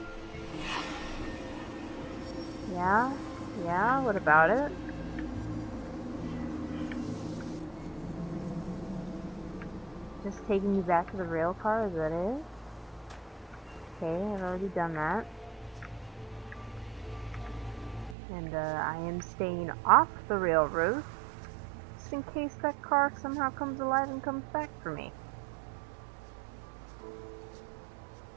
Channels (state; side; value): drops out; left; at 18.2 s